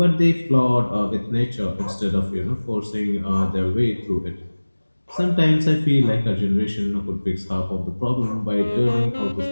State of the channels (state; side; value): inverted; both; correlation -1.00